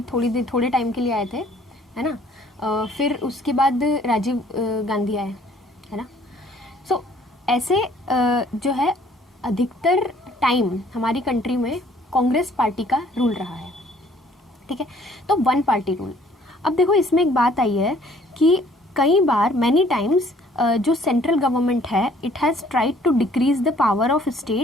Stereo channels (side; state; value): both; normal; correlation 0.59